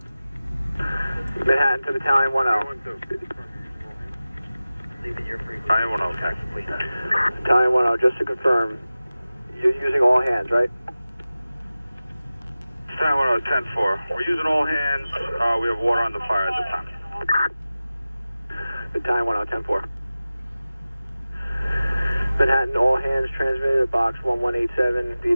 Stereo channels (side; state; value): both; inverted; correlation -0.96